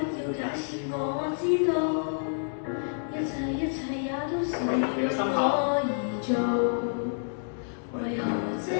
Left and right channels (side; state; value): right; silent; digital silence